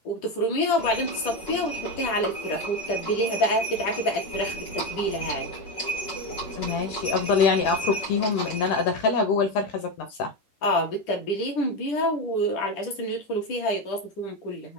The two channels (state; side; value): late; right; 10 ms